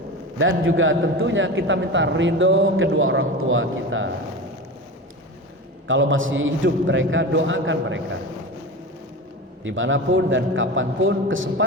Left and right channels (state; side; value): normal; both; correlation 0.28